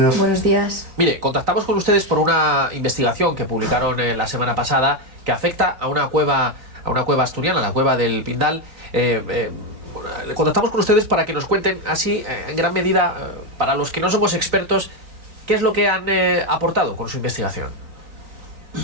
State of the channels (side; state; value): left; late; 3.8 ms